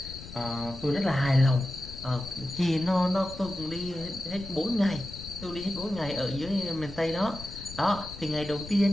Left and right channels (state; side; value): noise; left; rumble, 14 dB below the sound